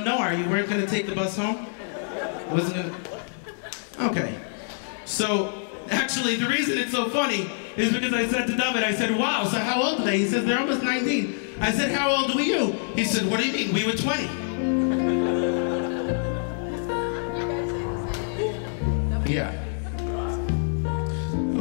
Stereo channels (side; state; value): right; silent; digital silence